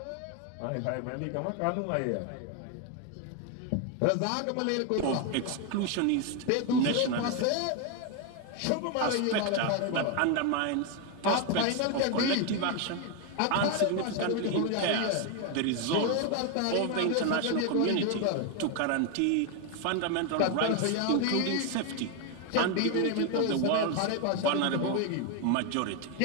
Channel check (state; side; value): different; both; correlation 0.01